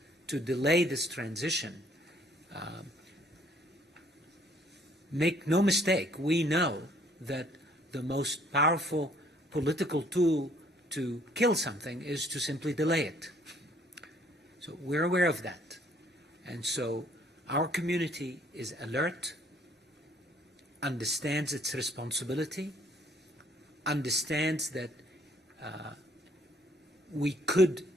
to delay this transition, make no mistake, we know that the most powerful political tool to kill something is to simply delay it. So we're aware of that. And so our community is alert, understands its responsibility, understands that we could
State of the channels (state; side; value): normal; both; correlation 0.62